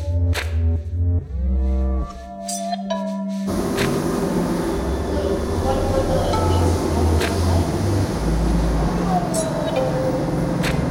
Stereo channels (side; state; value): both; identical; correlation 1.00